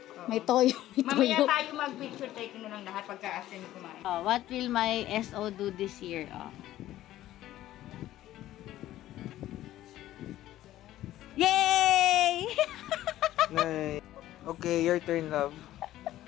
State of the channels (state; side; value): quieter; right; 14.2 dB